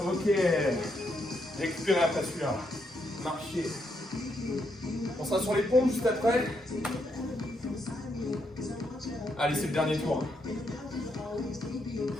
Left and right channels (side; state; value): both; normal; correlation 0.78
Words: Ok, récupérez après celui-là. Marchez. On sera sur les pompes juste après. Allez, c'est le dernier tour.